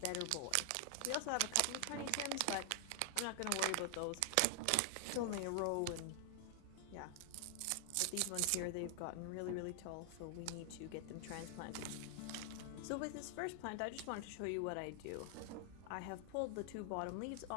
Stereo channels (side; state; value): both; different; correlation 0.00